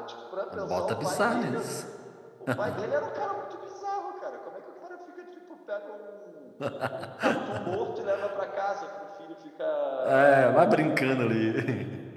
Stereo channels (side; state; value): both; identical; correlation 1.00